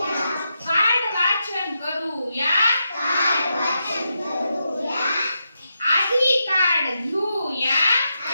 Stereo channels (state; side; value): inverted; both; correlation -0.85